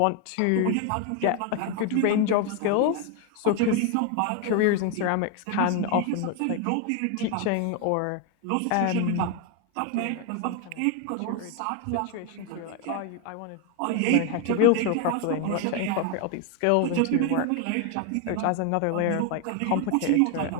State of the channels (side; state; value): both; different; correlation 0.01